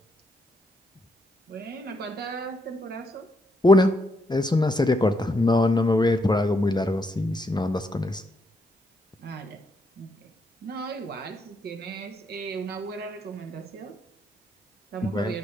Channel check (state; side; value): normal; both; correlation 0.77